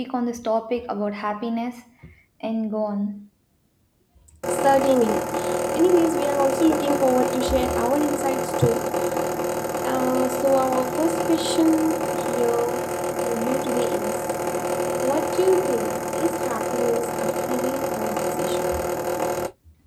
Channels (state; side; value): identical; both; correlation 1.00